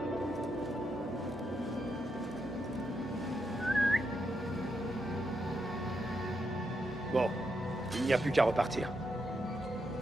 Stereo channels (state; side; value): normal; both; correlation 0.82